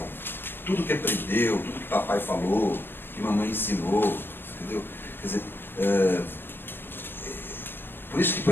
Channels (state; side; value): late; right; 0.10 ms